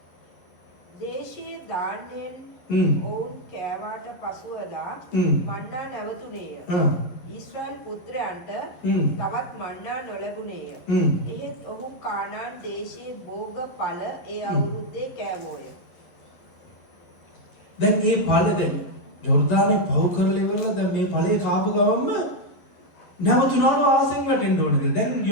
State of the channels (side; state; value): right; late; 11 ms